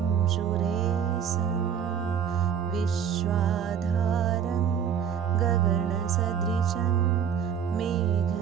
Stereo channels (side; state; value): left; quieter; 8.0 dB